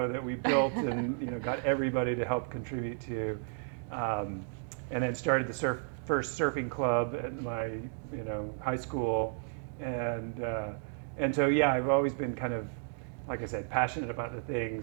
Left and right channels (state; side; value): silent; left; 56 dB below the other